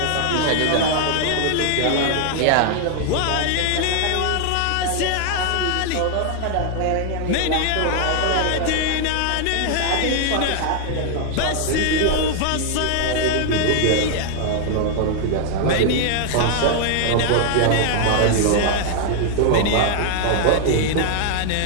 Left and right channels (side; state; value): both; different; correlation 0.00